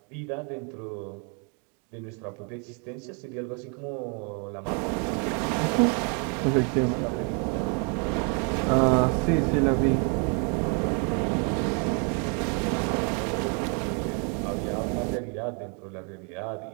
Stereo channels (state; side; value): quieter; left; 37.7 dB